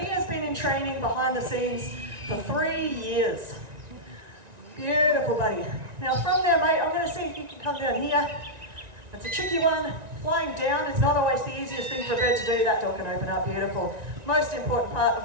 has been in training behind the scenes for 3 years. Beautiful, buddy. Now, from there, mate, I'm going to see if you can come down here. It's a tricky one. Flying down is not always the easiest thing for a bird to do. That door can open up, beautiful. Most important part of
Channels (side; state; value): left; late; 1.9 ms